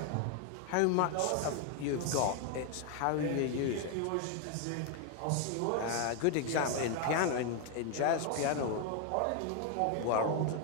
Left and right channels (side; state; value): both; different; correlation 0.01